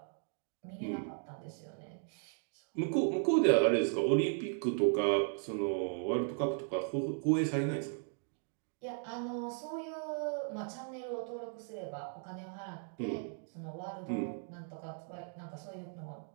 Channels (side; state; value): left; silent; 53 dB below the other